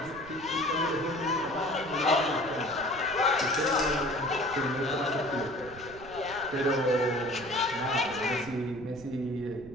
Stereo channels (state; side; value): noise; right; rumble, 18 dB below the sound